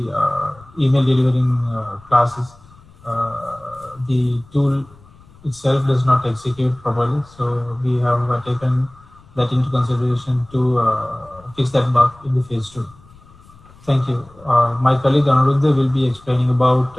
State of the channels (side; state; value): left; noise; rumble, 25 dB below the sound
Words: email delivering classes, the tool itself does not execute properly. So we have taken that into consideration to fix that bug in the phase 2. Thank you. My colleague Anuruddha will be explaining about